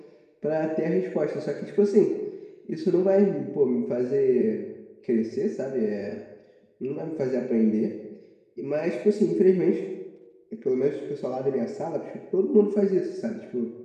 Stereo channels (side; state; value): both; identical; correlation 1.00